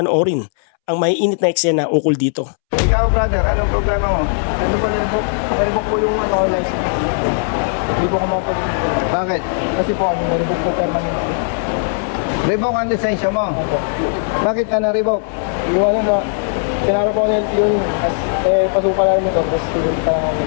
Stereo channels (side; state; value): right; silent; 68 dB below the other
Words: ang maiinit na eksena ukol dito. Ikaw, brother, anong problema mo? Ano po nila po? Naribok po yung license. Hindi po ako mapag... Bakit? Kasi po ano, naribok po permanent. Revoke ang lisensya mo. Opo. Bakit ka na-revoke? Iwan na, pinara po ako ng LTO yun. Pasuka lang ito, tapos student pa lang ako.